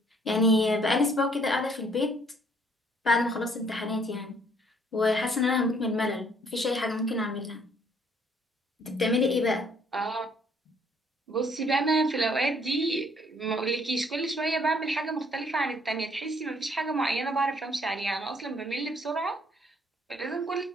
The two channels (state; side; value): normal; both; correlation 0.64